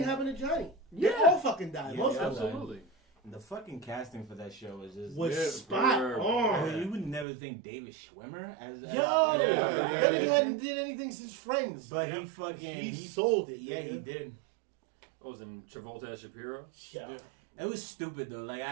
happened to Johnny. They Yeah. all fucking died. Yeah, Most of them Absolutely. the fucking casting for that show was just... was Yeah, spot bro. I on. mean, you would never think David Schwimmer as... Yo, Yeah, that nigga hadn't did anything since Friends. But he fucking... he sold it. Yeah, nigga. he did. What was in Travolta as Shapiro? Yeah. Yeah. It was stupid, though. Like,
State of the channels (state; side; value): drops out; left; at 7.2 s